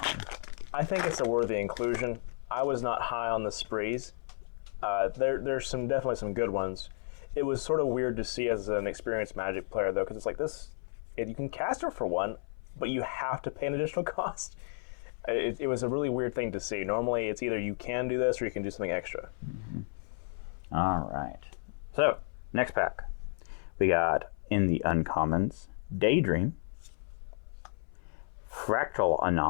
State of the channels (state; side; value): silent; right; 56 dB below the other